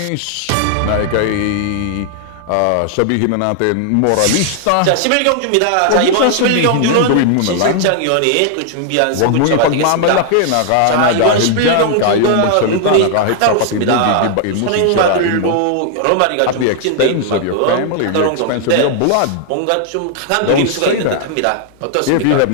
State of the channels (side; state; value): both; different; correlation 0.00